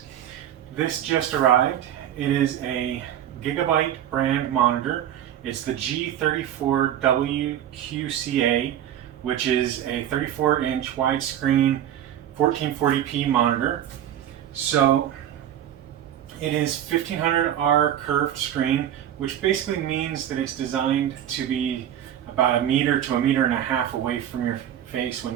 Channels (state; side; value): quieter; left; 10.8 dB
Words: This just arrived. It is a Gigabyte brand monitor. It's the G34WQCA, which is a 34-inch widescreen 1440p monitor. So it is 1500R curved screen, which basically means that it's designed to be about 1 meter to 1.5 meters away from your face